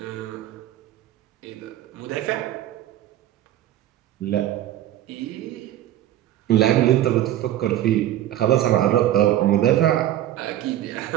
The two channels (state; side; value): quieter; left; 12.9 dB